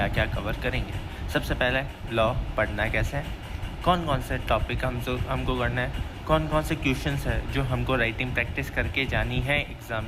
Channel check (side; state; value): both; identical; correlation 1.00